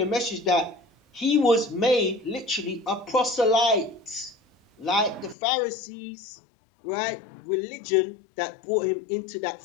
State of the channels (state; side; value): drops out; right; at 5.4 s